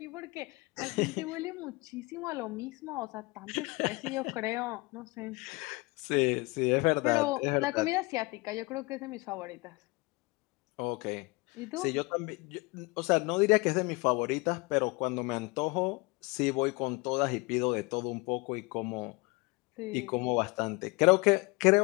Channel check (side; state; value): right; quieter; 25.9 dB